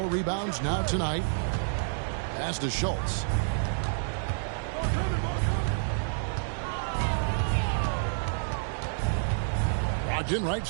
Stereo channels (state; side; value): silent; left; digital silence